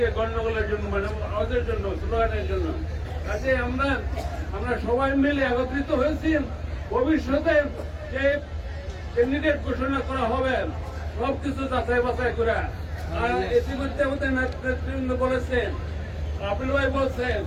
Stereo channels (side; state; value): both; identical; correlation 1.00